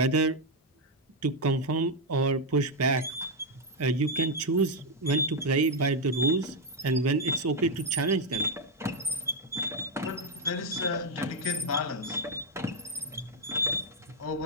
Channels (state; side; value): normal; both; correlation 0.01